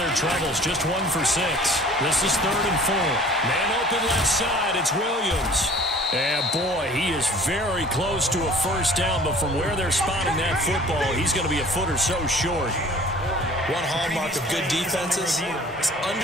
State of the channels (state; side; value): normal; both; correlation 0.49